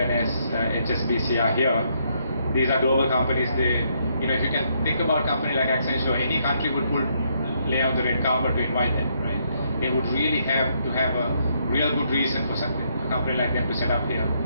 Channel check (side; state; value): both; inverted; correlation -0.73